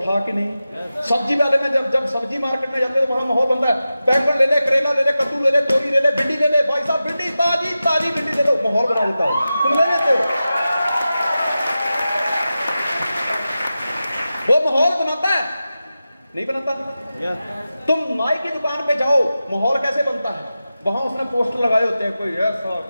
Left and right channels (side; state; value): both; inverted; correlation -0.93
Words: कि नहीं? सब्जी वाले में जब सब्जी मार्केट में जाते हैं तो वहां माहौल बनता है। बैंगन ले ले, करेला ले ले, कद्दू ले ले, तोरी ले ले, भिंडी ले ले, भाई साहब भिंडी ताजी भिंडी ले लो, माहौल बना देता है। तुम ले लेते हो, वो माहौल बनाता है। नहीं बनाता? तुम नाई की दुकान पे जाओ, माहौल कैसे बनता है? वहां उसने पोस्टर लगाए होते हैं, कोई ऐसा